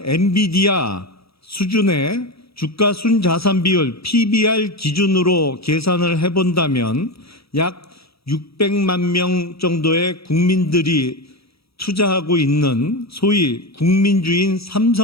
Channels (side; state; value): right; late; 0.77 ms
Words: 엔비디아 수준의 주가 순자산 비율 PBR 기준으로 계산을 해본다면 약 600만 명 정도의 국민들이 투자하고 있는 소위 국민주인